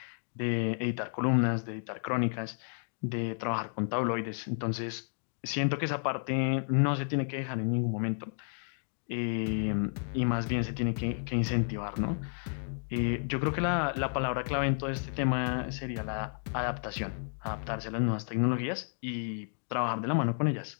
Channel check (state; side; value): silent; right; digital silence